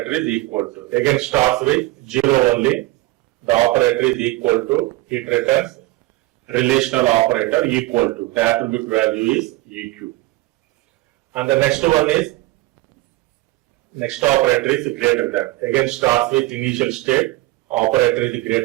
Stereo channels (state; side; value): quieter; left; 18.9 dB